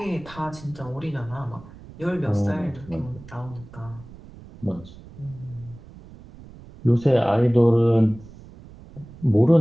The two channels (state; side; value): noise; right; rumble, 19 dB below the sound